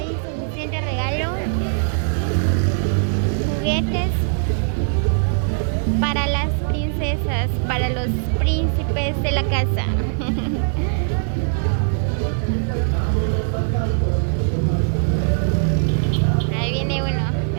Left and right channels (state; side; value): silent; left; digital silence